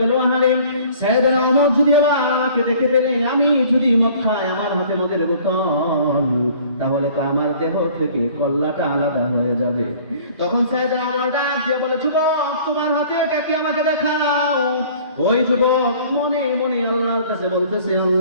আহারে সাইয়েদনা ওমর যদি আমাকে দেখে ফেলে, আমি যদি মদ খাই, আমার হাতে মদের বোতল, তাহলে তো আমার দেহ থেকে কল্লাটা আলাদা হয়ে যাবে। তখন সাইয়েদনা ওমর ডাক দিয়ে বলে, যুবক তোমার হাতে এটা কি, আমাকে দেখাও। ওই যুবক মনে মনে আল্লাহর কাছে বলতেছে,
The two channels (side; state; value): both; inverted; correlation -0.51